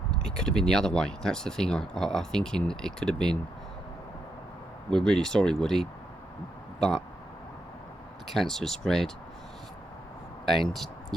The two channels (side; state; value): both; normal; correlation 0.81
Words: it could have been the other way. That's the thing. I thinking it could have been, "We're really sorry, Woody, but the cancer has spread," and